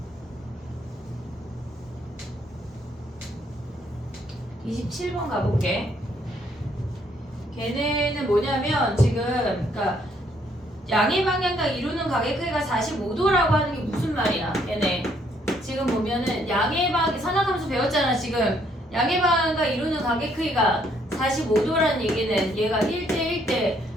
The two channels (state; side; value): normal; both; correlation 0.68